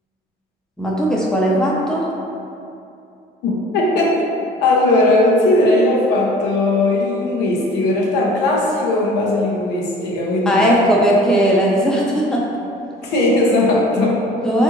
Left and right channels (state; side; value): normal; both; correlation 0.47